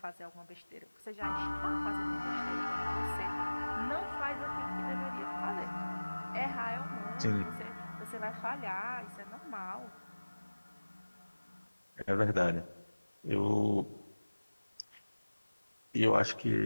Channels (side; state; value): both; inverted; correlation -1.00